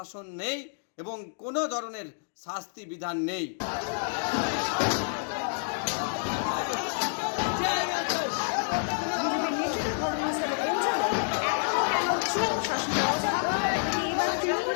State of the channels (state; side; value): silent; right; digital silence